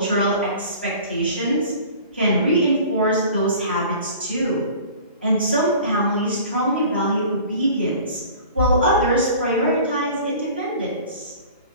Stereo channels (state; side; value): inverted; both; correlation -0.43